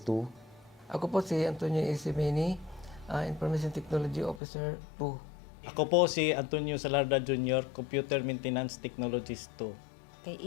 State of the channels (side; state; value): right; drops out; at 4.4 s